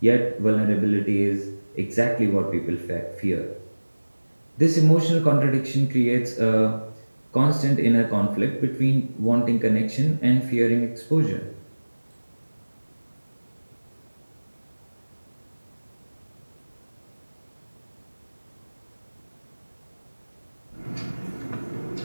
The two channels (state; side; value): inverted; both; correlation -1.00